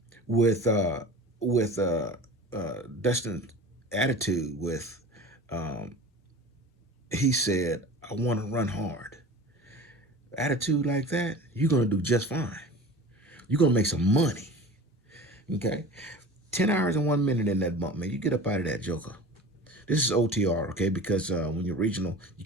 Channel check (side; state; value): both; normal; correlation 0.37